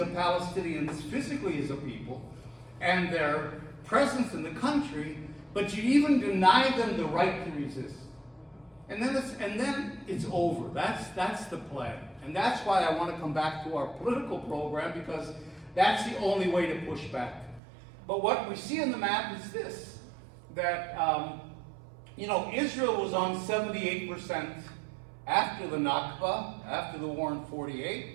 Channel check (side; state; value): left; drops out; at 17.6 s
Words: Palestinians physically as a people and their presence in the country, but you even deny them the right to resist. And then it's over. That's the plan. And that's why I want to come back to our political program, because that's the only way to push back. But what we see in the map is this, that Israel was on 78% after the Nakba, after the war in